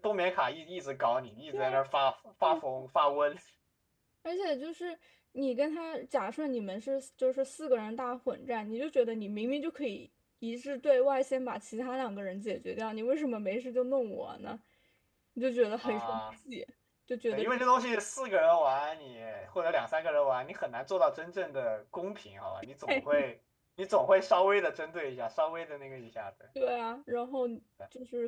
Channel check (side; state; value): both; identical; correlation 1.00